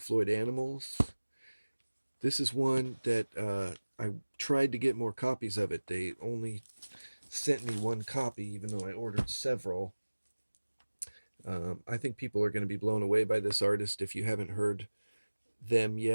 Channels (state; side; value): inverted; both; correlation -1.00